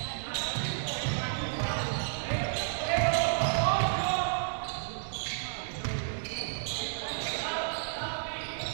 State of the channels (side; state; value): left; silent; digital silence